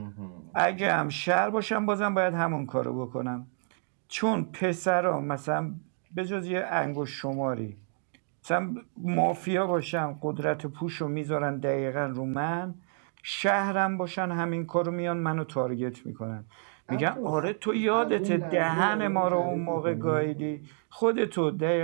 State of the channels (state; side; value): silent; left; 58 dB below the other